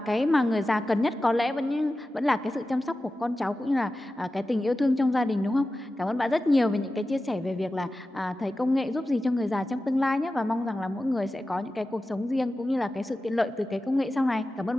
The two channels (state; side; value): normal; both; correlation 0.94